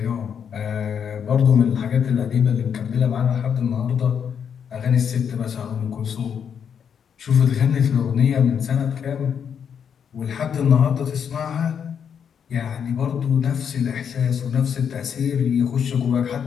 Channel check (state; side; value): quieter; right; 7.6 dB